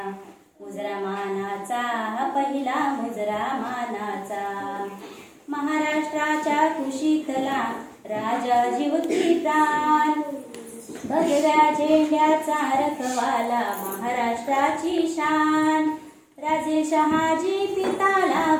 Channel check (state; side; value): identical; both; correlation 1.00